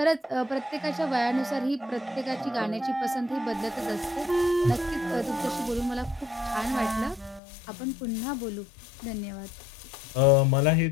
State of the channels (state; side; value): drops out; right; at 7.4 s